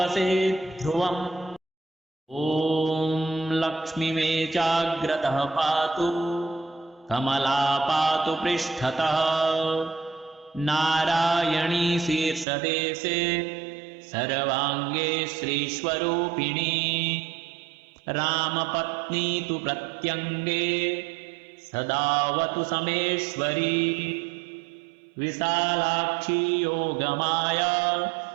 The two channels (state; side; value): drops out; left; at 12.5 s